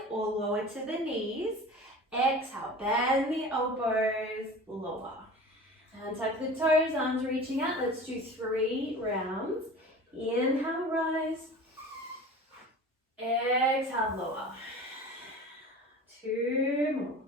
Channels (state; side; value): normal; both; correlation 0.38